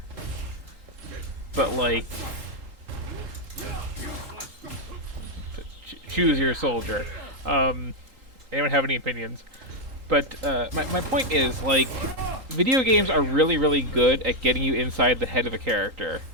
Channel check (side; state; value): left; late; 3.8 ms